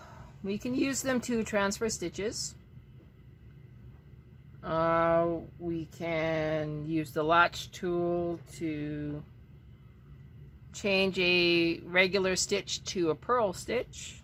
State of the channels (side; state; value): both; identical; correlation 1.00